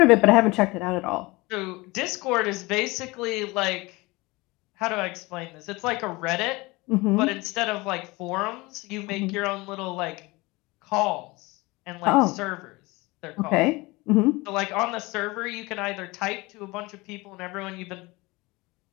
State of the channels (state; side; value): quieter; right; 23.0 dB